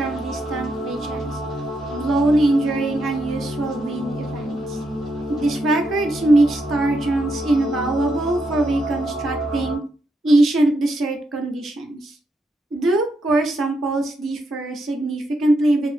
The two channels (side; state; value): both; normal; correlation 0.81